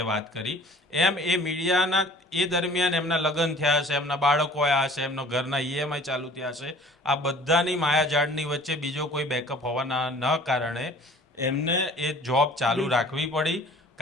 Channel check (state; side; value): normal; both; correlation 0.49